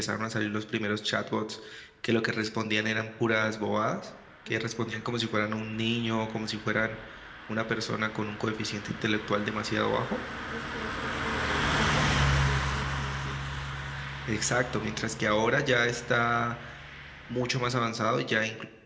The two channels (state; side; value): identical; both; correlation 1.00